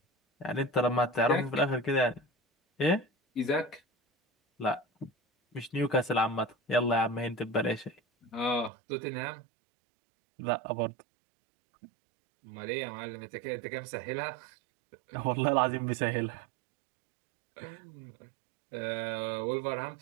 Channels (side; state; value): left; drops out; at 8.7 s